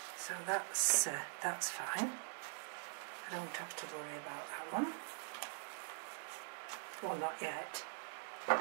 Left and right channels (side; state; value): left; silent; digital silence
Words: So that's fine. I don't have to worry about that one. Well, not yet.